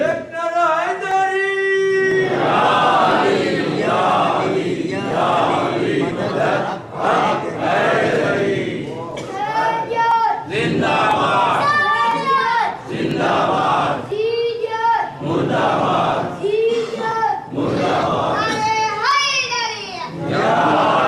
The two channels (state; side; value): identical; both; correlation 1.00